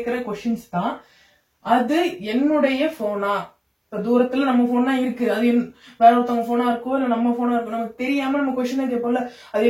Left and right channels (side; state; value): both; identical; correlation 1.00